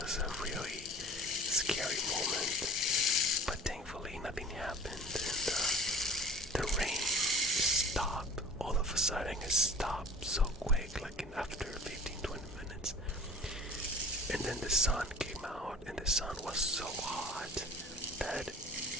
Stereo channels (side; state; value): both; normal; correlation 0.43